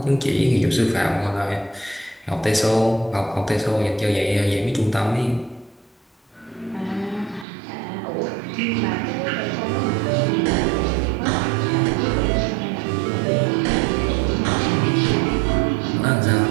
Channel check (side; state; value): left; drops out; at 7.5 s